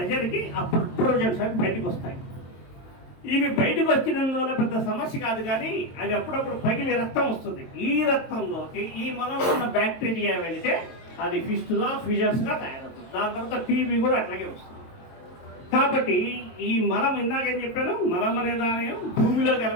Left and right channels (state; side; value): late; right; 22 ms